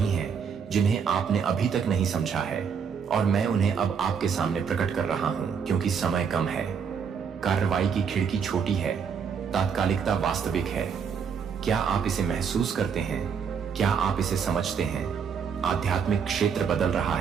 हैं जिन्हें आपने अभी तक नहीं समझा है, और मैं उन्हें अब आपके सामने प्रकट कर रहा हूं, क्योंकि समय कम है। कार्रवाई की खिड़की छोटी है, तात्कालिकता वास्तविक है। क्या आप इसे महसूस करते हैं? क्या आप इसे समझते हैं? आध्यात्मिक क्षेत्र बदल रहा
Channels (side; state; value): left; quieter; 6.7 dB